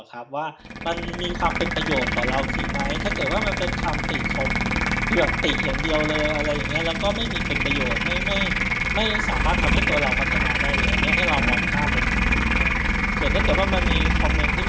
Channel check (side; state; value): both; identical; correlation 1.00